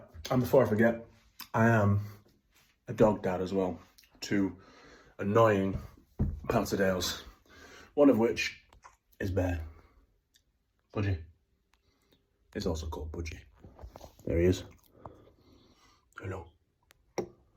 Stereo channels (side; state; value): both; identical; correlation 1.00